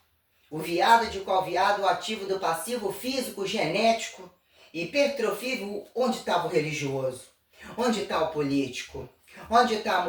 O viado de qual viado, o ativo do passivo, o físico, o genético, hipertrofia, onde estava o religioso? Onde está o político? Onde está a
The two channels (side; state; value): both; identical; correlation 1.00